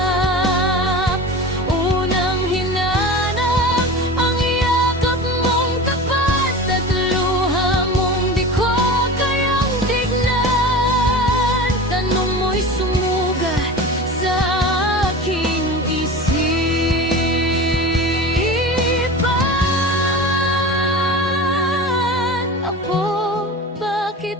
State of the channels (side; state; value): both; normal; correlation 0.32